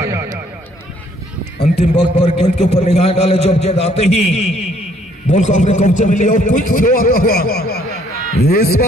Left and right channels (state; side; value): normal; both; correlation 0.64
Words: अंतिम वक्त पर गेंद के ऊपर निगाह डाले, जब गेंद आते ही बॉल को अपने कब्जे में लिया और क्विक थ्रो आता हुआ। इस